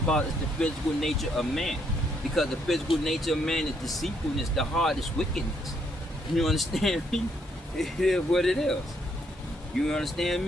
the physical nature of man. Because the physical nature of man is deceitfulness, the heart is wickedness. You understand me? It is what it is. You understand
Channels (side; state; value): both; normal; correlation 0.72